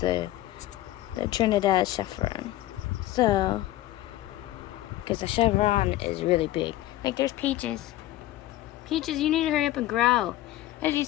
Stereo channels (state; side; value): quieter; right; 15.3 dB